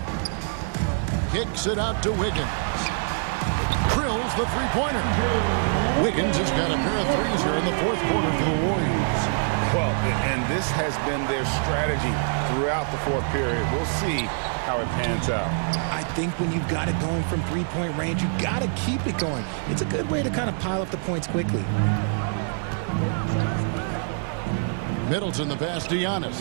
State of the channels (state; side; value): silent; left; 62 dB below the other